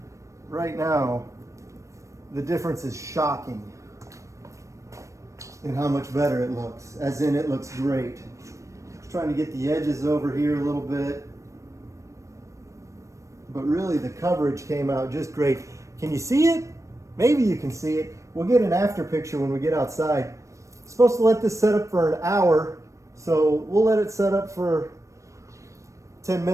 right now, the difference is shocking in how much better it looks, as in it looks great. Just trying to get the edges over here a little bit, but really the coverage came out just great. Can you see it? Maybe you can see it. We'll get an after picture when we get outside. I'm supposed to let this set up for an hour, so we'll let it set up for 10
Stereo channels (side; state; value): left; late; 0.15 ms